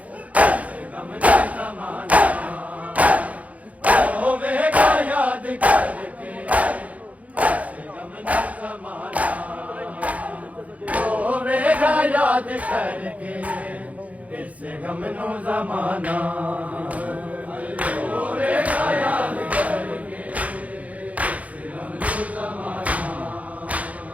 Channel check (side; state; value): left; late; 0.069 ms